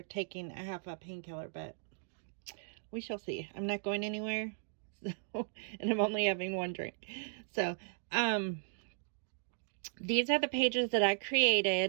taking a half a painkiller, but we shall see. I'm not going anywhere, so, and I'm only having one drink. So these are the pages that I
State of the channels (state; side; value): silent; left; digital silence